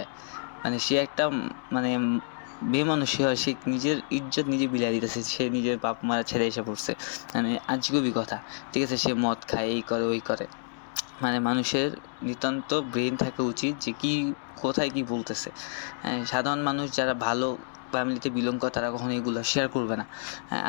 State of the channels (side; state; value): right; silent; digital silence